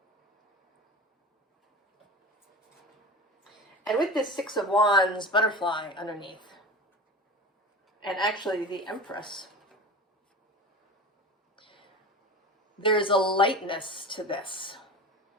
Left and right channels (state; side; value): normal; both; correlation 0.32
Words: And with this Six of Wands butterfly underneath, and actually the Empress, there's a lightness to this.